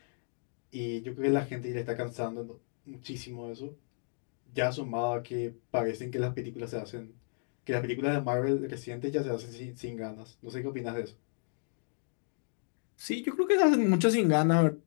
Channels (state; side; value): silent; right; digital silence